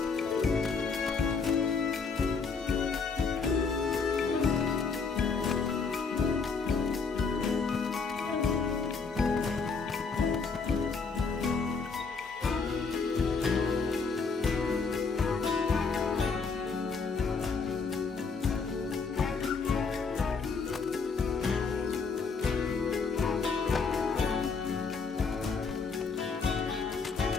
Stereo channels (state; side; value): quieter; right; 4.9 dB